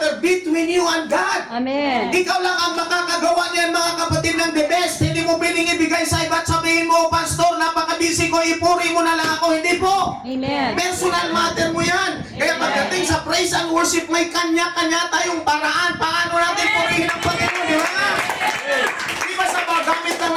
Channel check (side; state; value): both; identical; correlation 1.00